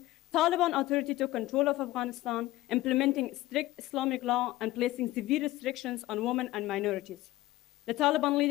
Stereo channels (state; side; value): quieter; right; 17.0 dB